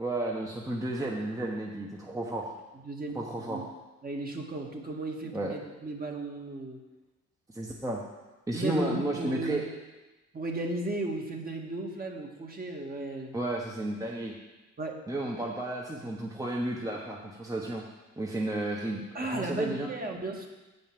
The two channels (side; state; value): both; normal; correlation 0.61